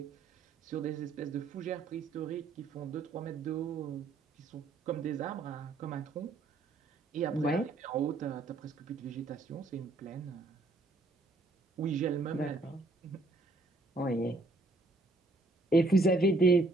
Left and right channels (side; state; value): left; quieter; 3.2 dB